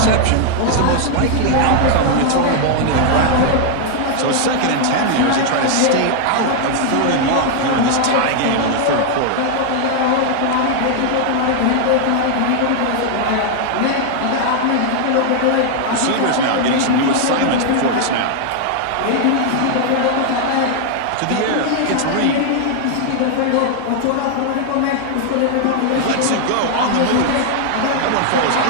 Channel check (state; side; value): different; both; correlation 0.00